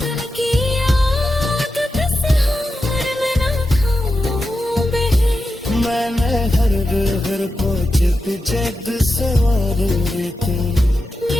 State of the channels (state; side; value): normal; both; correlation 0.90